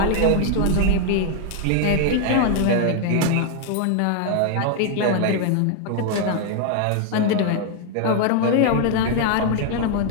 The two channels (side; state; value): both; different; correlation 0.00